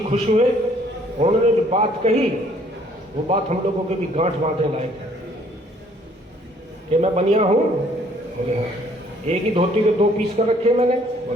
खुश हुए, उन्होंने जो बात कही वो बात हम लोगों के भी गांठ बांधने लायक है कि मैं बनिया हूँ। बोले हाँ। एक ही धोती के 2 पीस कर रखे मैंने?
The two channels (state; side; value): normal; both; correlation 0.61